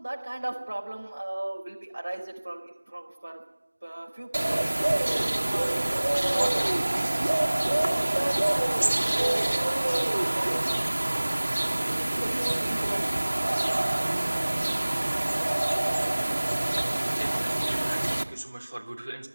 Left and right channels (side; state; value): both; inverted; correlation -1.00